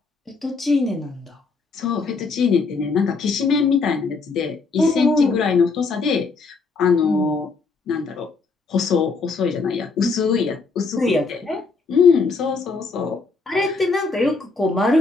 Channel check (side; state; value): right; quieter; 4.3 dB